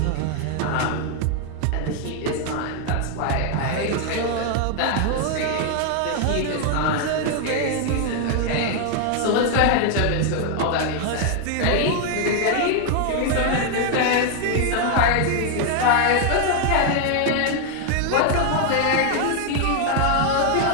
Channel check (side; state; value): both; different; correlation 0.00